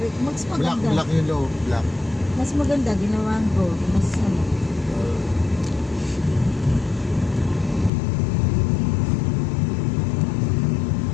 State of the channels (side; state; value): right; drops out; at 7.9 s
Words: mas Black, maganda. black yung low, black. Mas maganda, ginawa ang gold. Mas ano.